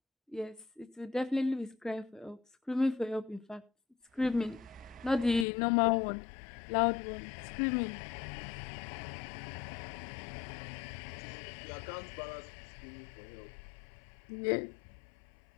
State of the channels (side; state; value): right; drops out; at 5.5 s